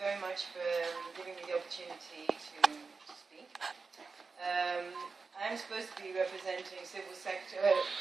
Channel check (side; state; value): left; quieter; 4.5 dB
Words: much for giving me the opportunity to speak. I'm supposed to be representing civil sector.